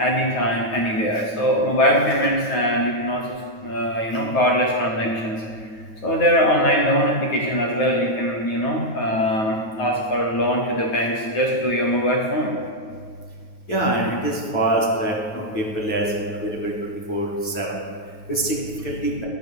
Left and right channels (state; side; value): late; right; 9.3 ms